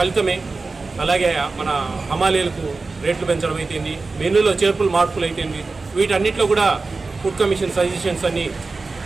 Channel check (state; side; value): quieter; left; 3.9 dB